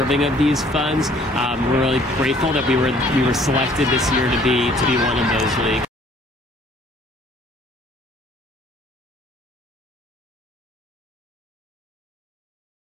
of these funds. We're really grateful that we were selected this year to be one of those leagues.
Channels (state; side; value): normal; both; correlation 0.58